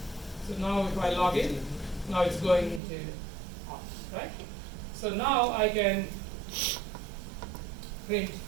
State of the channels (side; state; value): left; drops out; at 2.8 s